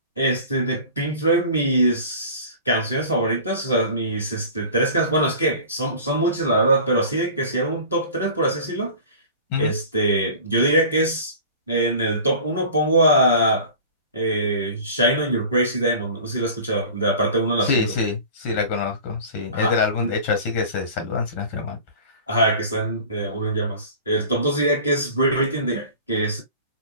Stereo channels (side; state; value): both; inverted; correlation -0.40